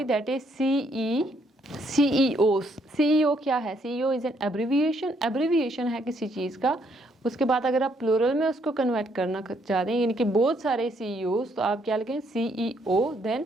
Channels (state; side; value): normal; both; correlation 0.70